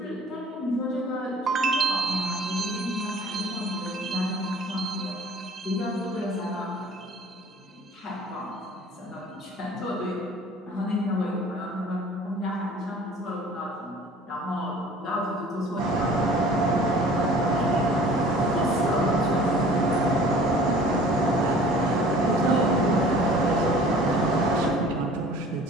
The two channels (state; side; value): normal; both; correlation 0.48